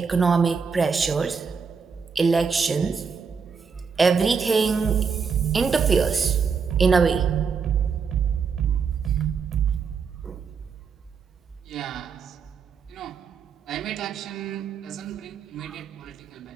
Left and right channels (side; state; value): left; quieter; 5.8 dB